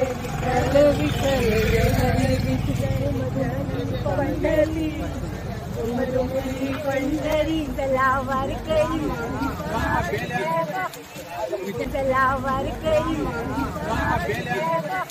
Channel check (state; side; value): identical; both; correlation 1.00